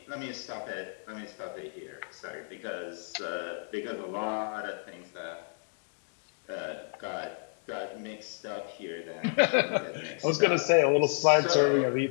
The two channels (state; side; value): silent; right; digital silence